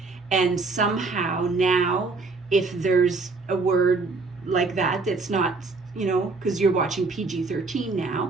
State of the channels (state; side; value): quieter; left; 3.9 dB